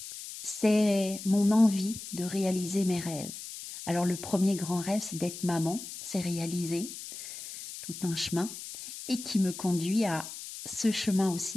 c'est mon envie de réaliser mes rêves. Alors le premier grand rêve, c'est d'être maman, c'est réalisé, tout un chemin, et qui me conduit à ce chemin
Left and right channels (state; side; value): noise; left; hiss, 11 dB below the sound